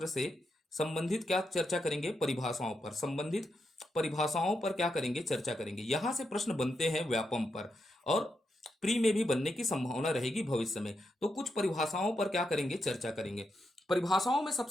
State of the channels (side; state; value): both; normal; correlation 0.84